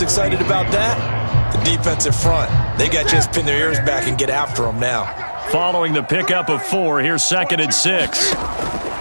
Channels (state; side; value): inverted; both; correlation -1.00